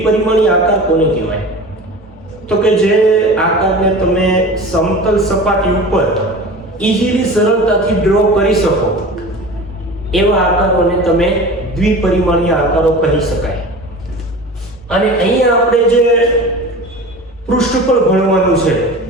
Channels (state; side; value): normal; both; correlation 0.36